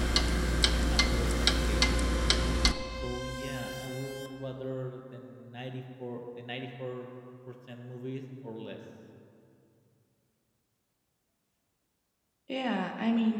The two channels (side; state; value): both; identical; correlation 1.00